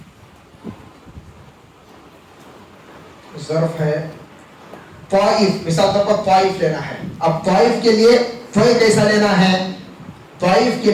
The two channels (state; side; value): identical; both; correlation 1.00